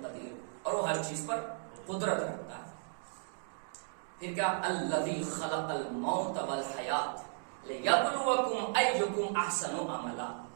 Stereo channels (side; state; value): left; silent; 54 dB below the other